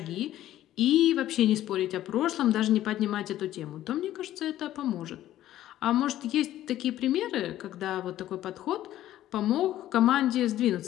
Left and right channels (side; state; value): right; quieter; 13.3 dB